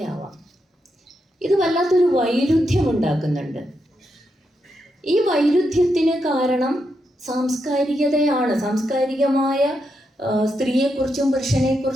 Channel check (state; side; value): normal; both; correlation 0.83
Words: ആവാം. ഇത് വല്ലാത്തൊരു വൈരുദ്ധ്യം ഉണ്ടാക്കുന്നുണ്ട്. ഈ വൈരുദ്ധ്യത്തിന് കാരണം സാംസ്കാരികതയാണ്. സാംസ്കാരികമായ സ്ത്രീയെക്കുറിച്ചും